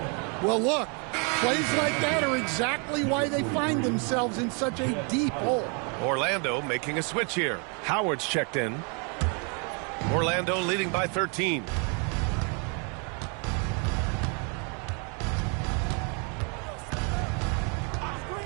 Well, look, plays like that are exactly why they find themselves in such a deep hole. Orlando making a switch here. Howard's checked in. Orlando leading by 13.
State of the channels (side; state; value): left; quieter; 36.3 dB